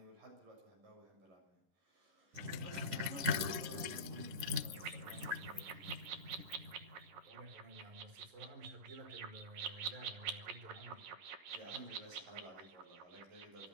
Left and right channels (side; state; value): left; late; 10 ms